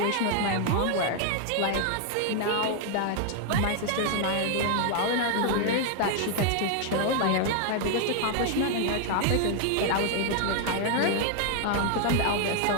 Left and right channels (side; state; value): both; different; correlation 0.00